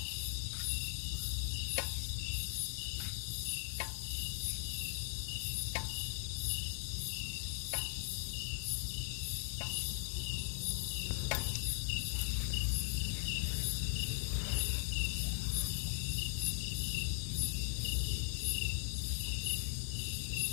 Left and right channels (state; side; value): silent; right; 52 dB below the other